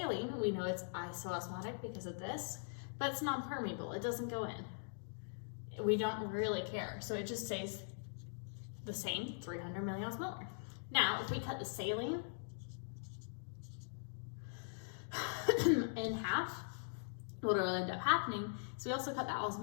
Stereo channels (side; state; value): right; silent; digital silence